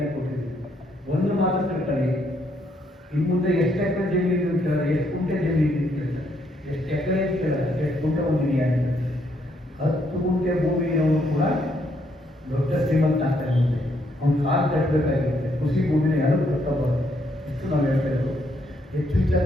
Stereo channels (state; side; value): normal; both; correlation 0.73